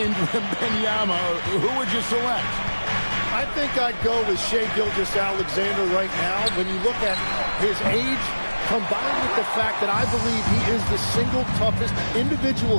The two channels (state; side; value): inverted; both; correlation -1.00